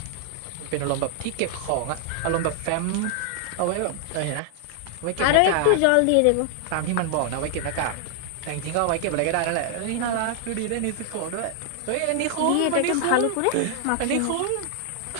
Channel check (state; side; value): different; both; correlation 0.00